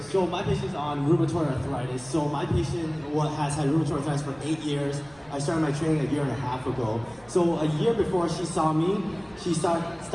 So my patient's on rheumatoid arthritis. So my patient has had rheumatoid arthritis for 8 years. I started my training 1.5 years ago. So a year before she saw me, she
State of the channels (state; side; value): noise; right; rumble, 27 dB below the sound